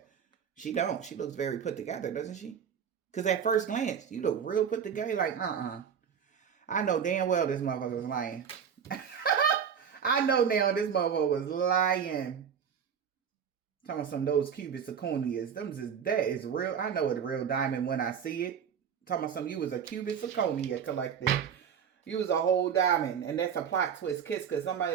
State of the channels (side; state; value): left; quieter; 7.6 dB